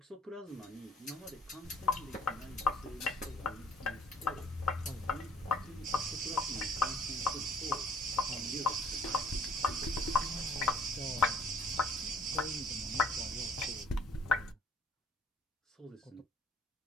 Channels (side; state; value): both; normal; correlation 0.58